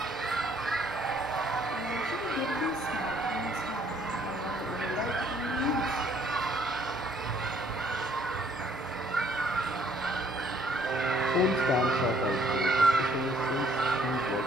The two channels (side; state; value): both; normal; correlation 0.63